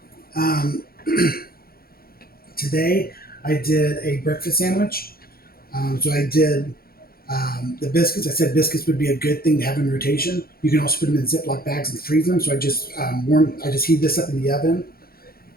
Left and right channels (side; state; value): right; late; 0.44 ms